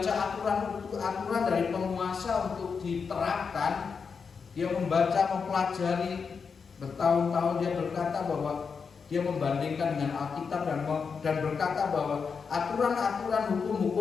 aturan dari penguasa untuk diterapkan. Dia membaca, mempelajari bertahun-tahun. Dia berkata bahwa dia membandingkan dengan Alkitab dan berkata bahwa aturan-aturan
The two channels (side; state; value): right; quieter; 5.7 dB